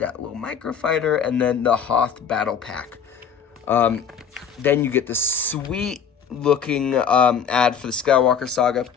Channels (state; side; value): quieter; right; 7.3 dB